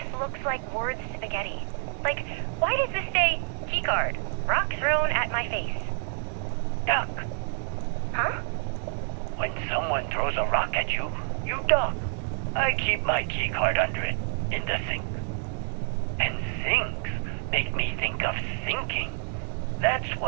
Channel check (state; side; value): silent; left; 59 dB below the other